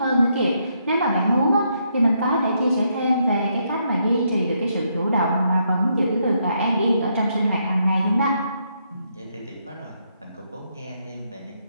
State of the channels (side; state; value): both; inverted; correlation -0.76